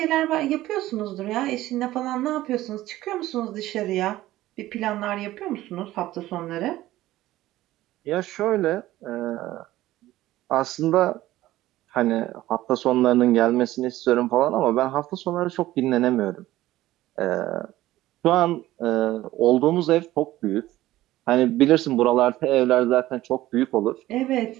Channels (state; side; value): quieter; left; 15.7 dB